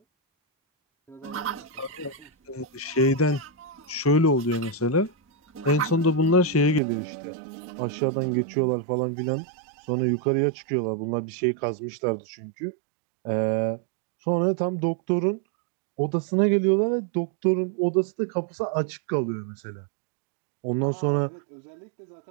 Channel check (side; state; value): left; drops out; at 6.8 s